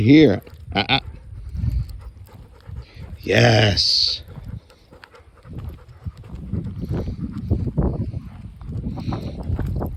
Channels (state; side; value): identical; both; correlation 1.00